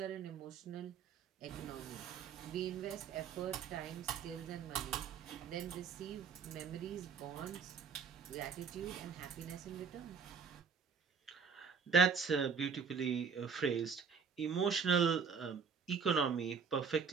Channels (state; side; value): quieter; left; 6.1 dB